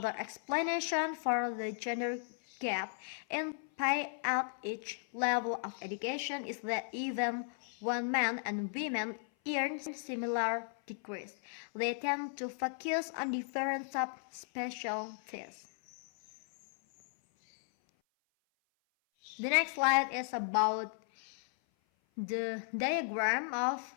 explanation for the gender gap in pay at each level of education is that even when men and women earn similar degrees, they tend to focus on different subspecialties. The next slide is about The diagram of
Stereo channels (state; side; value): silent; right; 54 dB below the other